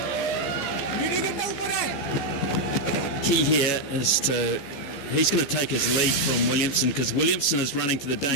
key here is he's going to take his lead from Williamson, because Williamson is running to the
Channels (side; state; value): right; late; 14 ms